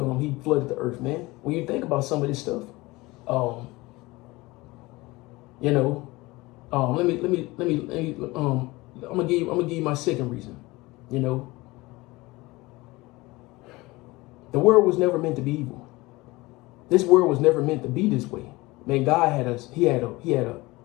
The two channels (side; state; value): right; quieter; 21.6 dB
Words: flooded the earth, man. When you think about some of this stuff, I'm gonna give you my second reason. The world was never meant to be evil. This world was never meant to be this way. Man, God had us.